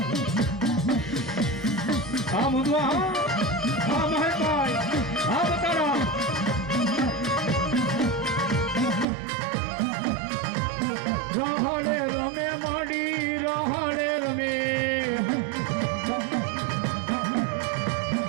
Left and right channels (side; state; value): left; drops out; at 9.1 s